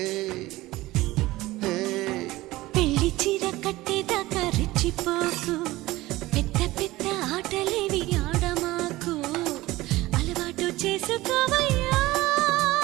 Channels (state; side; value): quieter; left; 18.4 dB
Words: పెళ్లి చీర కట్టేదాకా రెచ్చిపోకు పెద్ద పెద్ద ఆటలేవి ఆడమాకు అలవాటు చేసుకోవయ్యా